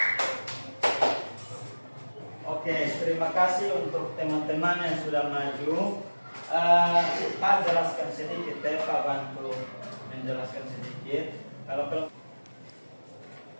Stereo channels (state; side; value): inverted; both; correlation -1.00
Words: Oke, terima kasih untuk teman-teman yang sudah maju. Pak jelaskan sedikit ya, Pak bantu menjelaskan sedikit.